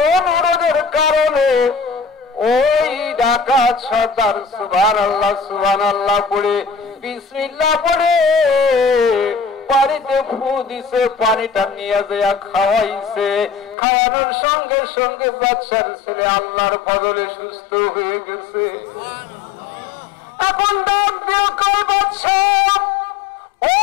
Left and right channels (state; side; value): drops out; right; at 13.8 s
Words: অনুরোধের কারণে ওই ডাকাত সর্দার সুবহানাল্লাহ পড়ে বিসমিল্লাহ পড়ে পানিতে ফু দিছে, পানিটা নিয়ে যায় খাওয়াইছে। খাওয়ানোর সঙ্গে সঙ্গে বাদশার ছেলে আল্লাহর ফজলে সুস্থ হয়ে গেছে। এখন ডাক দিয়ে কয়, বাদশা